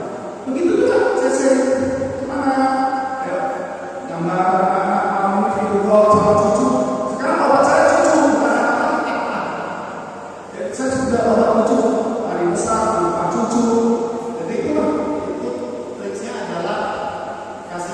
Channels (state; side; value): identical; both; correlation 1.00